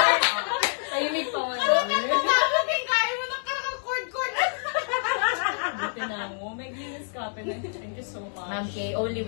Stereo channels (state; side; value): silent; right; digital silence